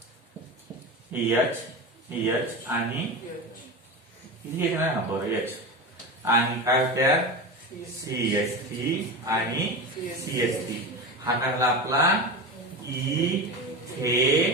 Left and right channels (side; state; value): both; normal; correlation 0.24